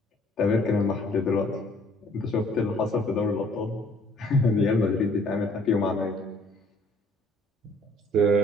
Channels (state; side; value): normal; both; correlation 0.59